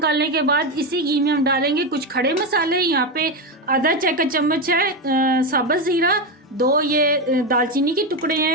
के बाद इसी घी में हम डालेंगे कुछ खड़े मसाले। यहाँ पे आधा चाय का चम्मच है साबुत जीरा, 2 ये दालचीनी के टुकड़े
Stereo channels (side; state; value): both; normal; correlation 0.12